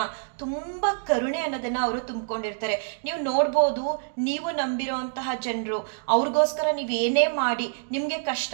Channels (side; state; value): left; silent; digital silence